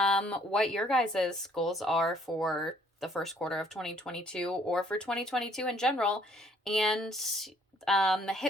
your guys' goals are for the first quarter of 2022 or for 2022 in general. And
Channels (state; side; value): normal; both; correlation 0.62